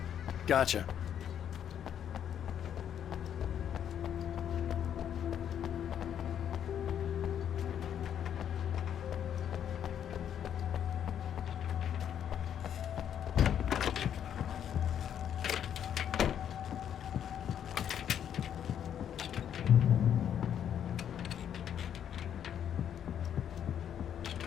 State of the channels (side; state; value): right; quieter; 9.3 dB